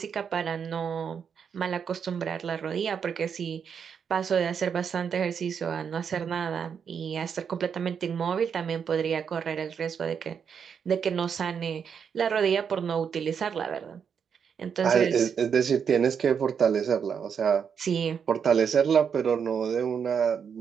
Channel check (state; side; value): quieter; left; 7.0 dB